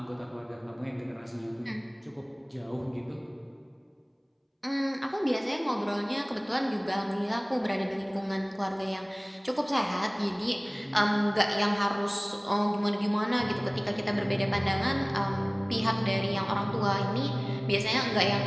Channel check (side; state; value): both; identical; correlation 1.00